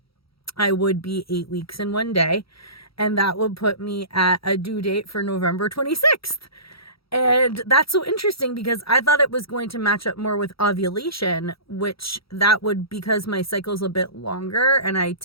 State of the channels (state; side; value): late; right; 0.75 ms